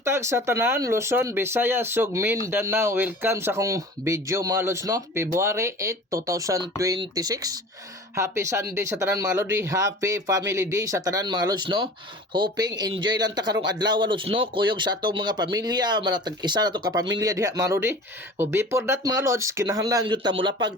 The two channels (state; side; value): normal; both; correlation 0.40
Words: sa tanan, Luzon, Visayas, ug Mindanao. Welcome sa akong video mga lods, no? February 8, 2026. Happy Sunday sa tanan mga lodi. Happy Family Day sa tanan mga lods, no? Hoping enjoy lang ta karong adlaw lods, no? Kuyog sa atong mga pamilya, manatag isa na to ka pamilya diha mga lodi. O before that mga lods, kinahanglan gyud ta mulapag